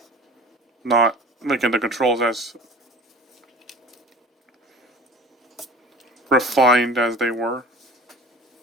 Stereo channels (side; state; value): both; normal; correlation 0.41